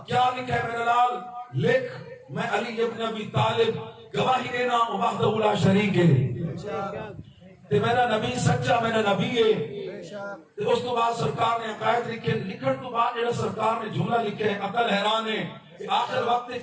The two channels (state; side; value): identical; both; correlation 1.00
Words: کیا لکھا ہے میرا لال؟ لکھ میں علی ابن ابی طالب گواہی دینا وحدہ لا شریک ہے، تے میرا نبی سچا میرا نبی ہے۔ اس تو بعد سرکار نے عقائد لکھے، لکھن تو بعد جڑا سرکار نے جملہ لکھے عقل حیران ہے کہ آخر